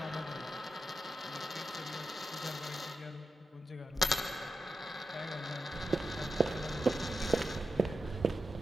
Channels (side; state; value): both; normal; correlation 0.90